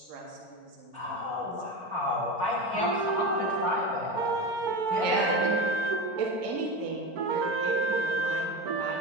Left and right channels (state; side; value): late; left; 4.4 ms